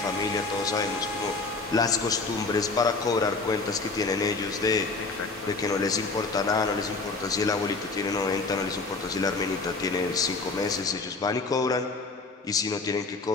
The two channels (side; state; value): right; quieter; 3.8 dB